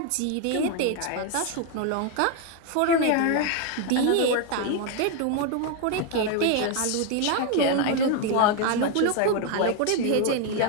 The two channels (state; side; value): different; both; correlation 0.01